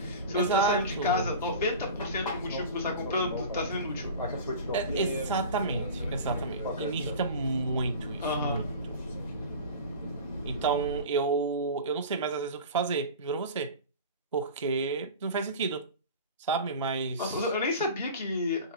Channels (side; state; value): both; inverted; correlation -0.35